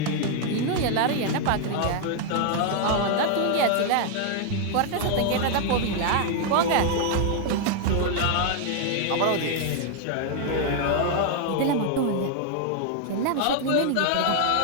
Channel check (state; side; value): different; both; correlation 0.00